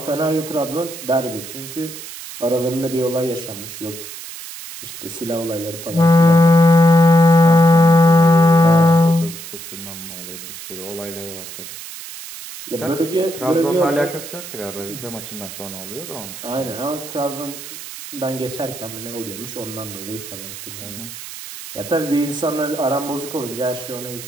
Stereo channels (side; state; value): right; noise; hiss, 12 dB below the sound